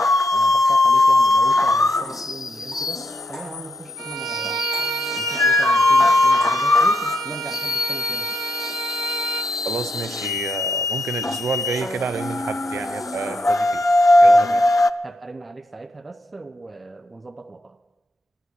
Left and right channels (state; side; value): normal; both; correlation 0.81